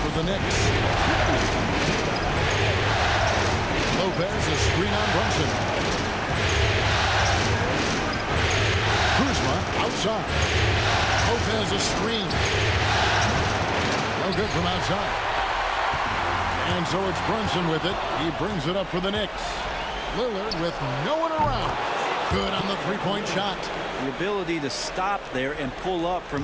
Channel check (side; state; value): both; identical; correlation 1.00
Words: for the Knicks. Lopez, a screen on Brunson. Kuzma outside. Lopez a screen. No good from outside. And so it's Brunson with it. He brings it up for the Knicks. Lillard with no one around. Good on the three-point shot. The ability to stop there and pull up